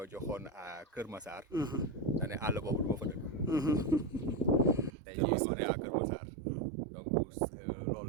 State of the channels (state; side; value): drops out; left; at 4.9 s